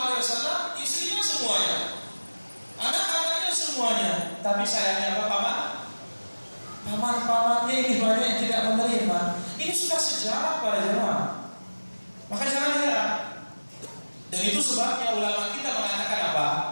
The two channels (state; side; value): inverted; both; correlation -1.00